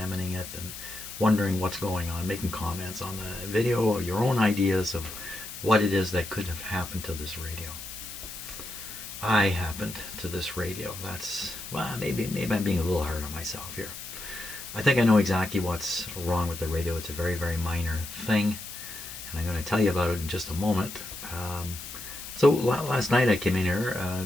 it and wondering what's going on, making comments on the video, or your own ideas of what it is that could have happened to this radio. I happened to this radio. Well, maybe I'm being a little hard on myself here. I think I know exactly what's wrong with the radio. It's a very, very minor thing, and I'm going to tell you about it in just a moment. So last night I came in here,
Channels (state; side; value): noise; left; hiss, 11 dB below the sound